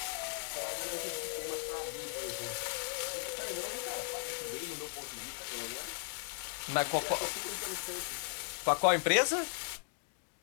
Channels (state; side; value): silent; right; digital silence